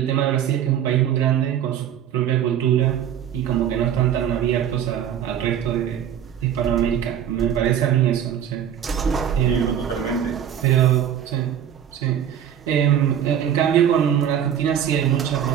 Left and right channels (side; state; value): left; quieter; 9.6 dB